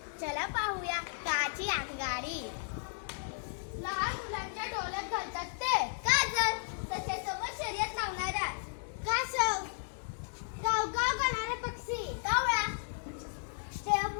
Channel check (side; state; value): right; silent; digital silence